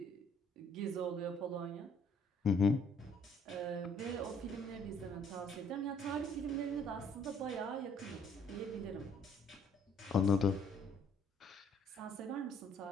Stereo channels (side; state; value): both; normal; correlation 0.62